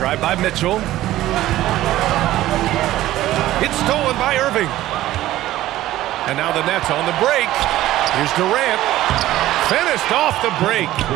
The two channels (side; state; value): left; quieter; 14.9 dB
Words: by Mitchell. It's stolen by Irving. And now the Nets on the break. Here's Durant. Finished off the break.